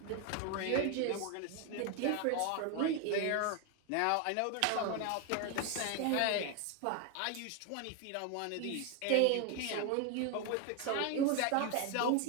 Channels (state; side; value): different; both; correlation 0.01